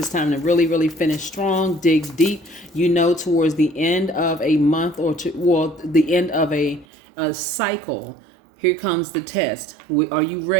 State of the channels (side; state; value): left; drops out; at 6.9 s